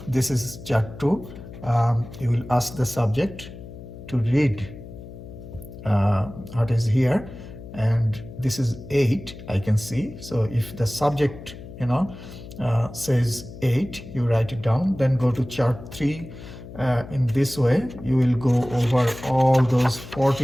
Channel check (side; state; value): left; noise; hum, 14 dB below the sound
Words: chart 2. You will ask the subject to read what is here, and this is 8, I can see. So if the subject says 8, you write it down. Then go to chart 3. In this way you will go over all those